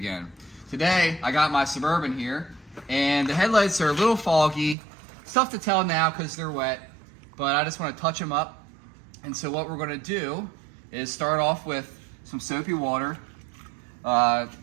Today, I got my Suburban here, and the headlights are a little foggy. It's tough to tell now because they're wet, but I just want to touch them up. And so what we're going to do is start off with some soapy water,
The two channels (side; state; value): left; drops out; at 4.8 s